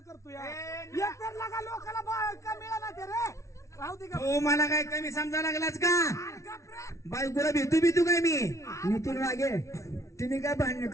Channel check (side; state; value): right; late; 0.14 ms